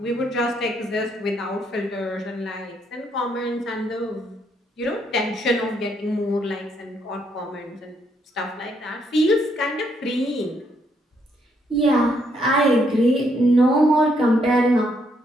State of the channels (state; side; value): normal; both; correlation 0.73